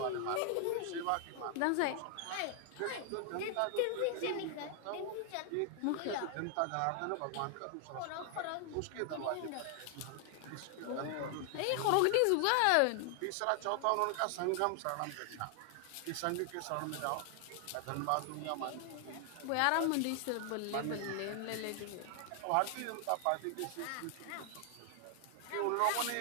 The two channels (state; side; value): different; both; correlation 0.00